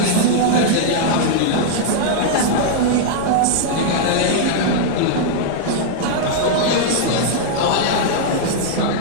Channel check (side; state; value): both; different; correlation -0.01